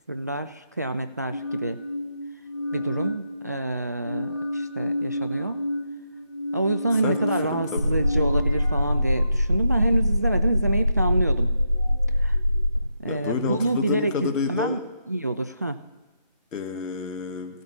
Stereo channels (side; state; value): both; inverted; correlation -0.81